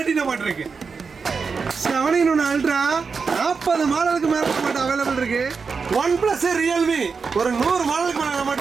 நம்மகிட்ட இருக்கு. 7 அல்ட்ரா 40 மாடலுக்கு மேல நம்மகிட்ட அவைலபிள் இருக்கு. OnePlus ரியல்மி ஒரு 100 மாடலுக்கு மேல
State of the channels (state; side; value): quieter; left; 5.2 dB